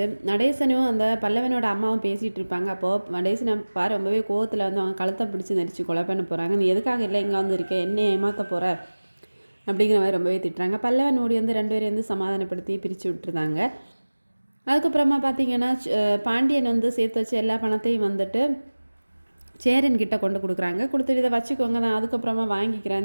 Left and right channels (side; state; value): both; inverted; correlation -1.00